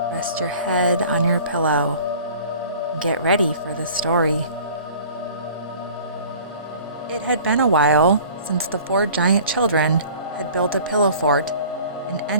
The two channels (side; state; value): both; inverted; correlation -0.47